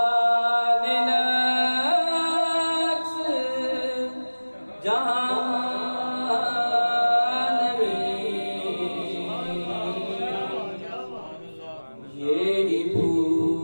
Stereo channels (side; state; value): both; inverted; correlation -1.00